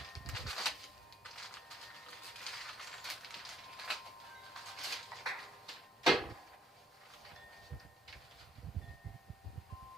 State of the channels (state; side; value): normal; both; correlation 0.66